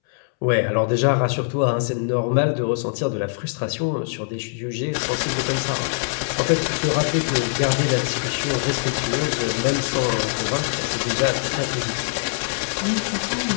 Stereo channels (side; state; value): right; silent; 64 dB below the other